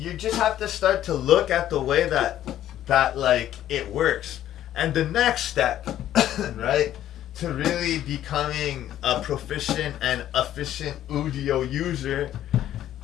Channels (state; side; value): quieter; right; 12.1 dB